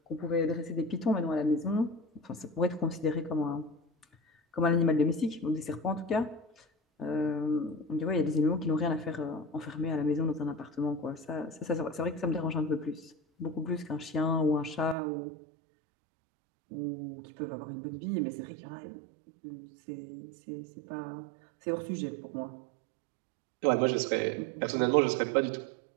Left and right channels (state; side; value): drops out; left; at 15.0 s